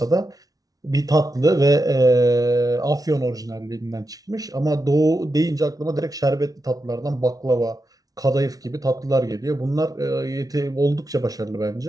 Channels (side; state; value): left; late; 0.18 ms